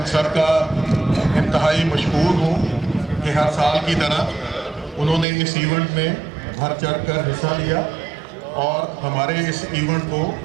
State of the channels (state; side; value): drops out; left; at 5.2 s